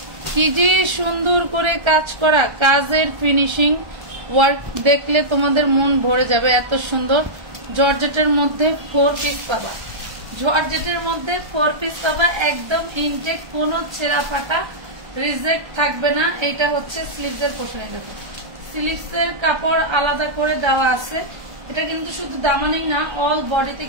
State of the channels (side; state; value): left; late; 1.3 ms